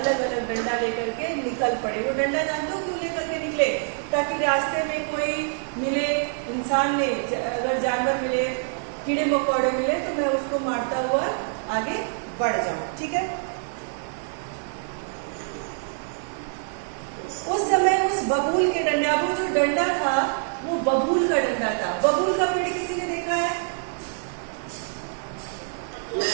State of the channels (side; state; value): left; silent; 59 dB below the other